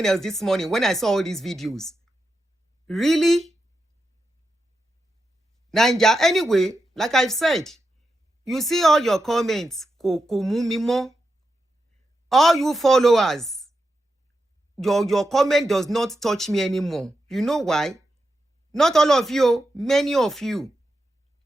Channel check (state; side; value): normal; both; correlation 0.87